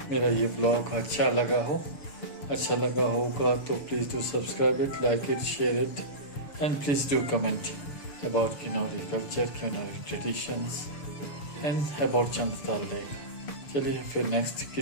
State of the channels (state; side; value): late; right; 6.9 ms